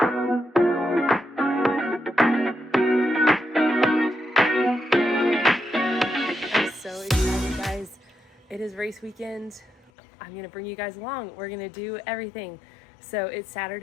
so excited, guys. It is race weekend. I'm gonna bring you guys along. We're gonna do everything. So it's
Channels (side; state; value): right; drops out; at 9.9 s